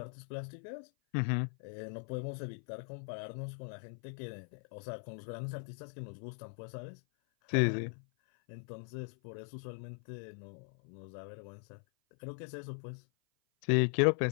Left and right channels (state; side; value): silent; right; 52 dB below the other